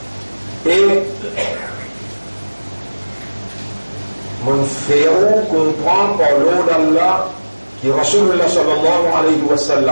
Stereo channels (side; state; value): both; inverted; correlation -1.00